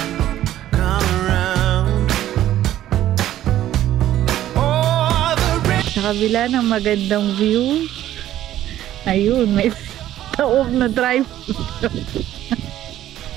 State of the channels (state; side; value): quieter; left; 12.9 dB